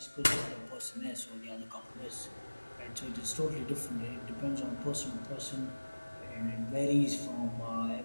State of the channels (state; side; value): inverted; both; correlation -1.00